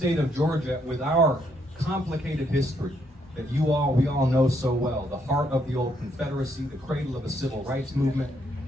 of Georgia, with our complicated history, that we all know so well, the heart of the old Confederacy, the cradle of the civil rights movement,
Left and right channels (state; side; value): normal; both; correlation 0.73